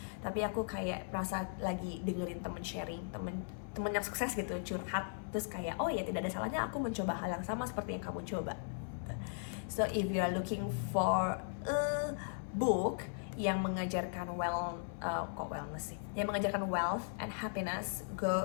Tapi aku kayak merasa lagi dengerin temen sharing, temen yang sukses gitu, curhat. Terus kayak, oh ya tidak ada salahnya aku mencoba hal yang sama seperti yang kamu coba. So if you are looking for a book yang mengajarkan wellness sih, yang mengajarkan wealth and happiness,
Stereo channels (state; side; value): silent; right; 53 dB below the other